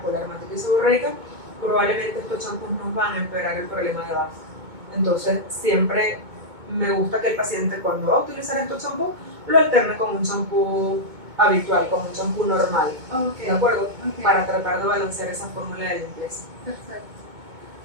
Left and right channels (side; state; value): left; late; 2.2 ms